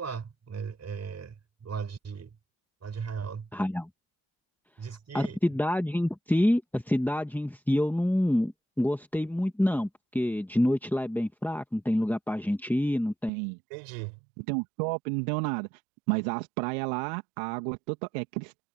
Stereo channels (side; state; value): left; drops out; at 13.3 s